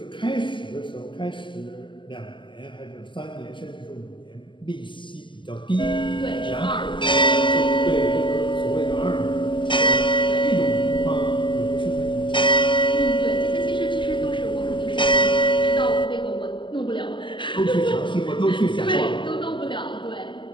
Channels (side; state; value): right; late; 0.24 ms